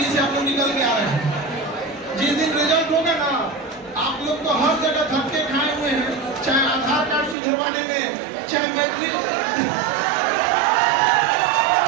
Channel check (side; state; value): left; drops out; at 7.4 s